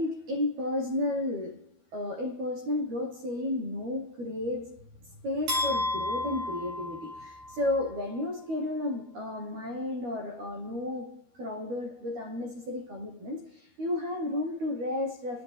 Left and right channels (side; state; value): left; late; 12 ms